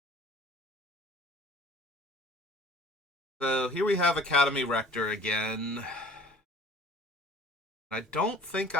So here we have Academy Rector again. I don't think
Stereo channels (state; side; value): normal; both; correlation 0.48